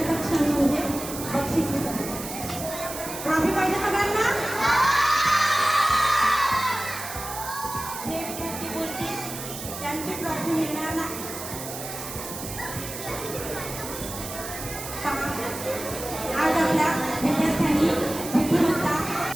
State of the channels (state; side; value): noise; right; hiss, 9 dB below the sound